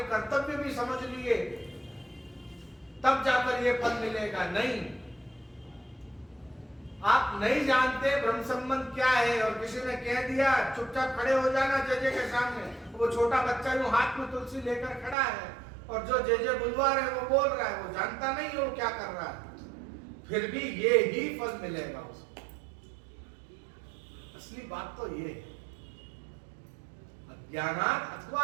कर्तव्य भी समझ लिए, तब जाकर ये फल मिलेगा। नहीं, आप नहीं जानते ब्रह्म संबंध क्या है और किसी ने कह दिया चुपचाप खड़े हो जाना जेजे के सामने। वो छोटा बच्चा यूं हाथ में तुलसी लेकर खड़ा है और जो जेजे बुलवा रहे वो बोल रहा है, वो जानता नहीं है वो क्या कर रहा है, फिर भी ये ही फल मिलेगा उसको। असली बात तो ये है, अज्ञानात्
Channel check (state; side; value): drops out; left; at 15.2 s